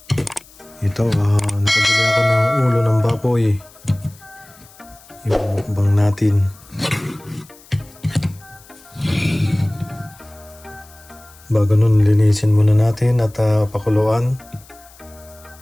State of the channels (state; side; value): noise; left; hiss, 24 dB below the sound